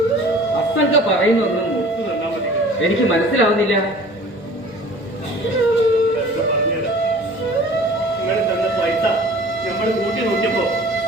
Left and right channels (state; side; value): normal; both; correlation 0.46